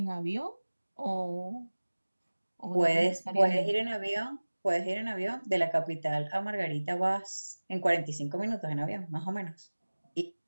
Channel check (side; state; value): both; inverted; correlation -1.00